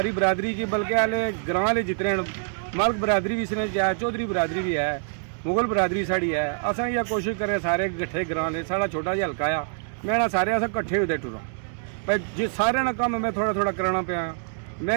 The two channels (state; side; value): silent; left; 61 dB below the other